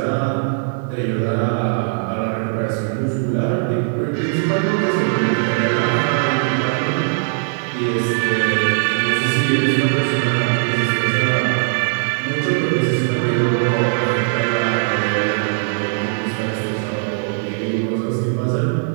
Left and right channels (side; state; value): left; silent; 64 dB below the other